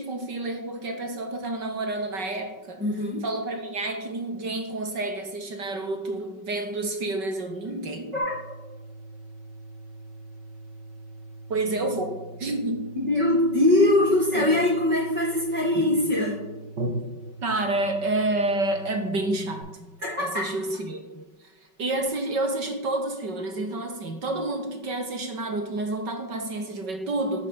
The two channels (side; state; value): left; late; 5.3 ms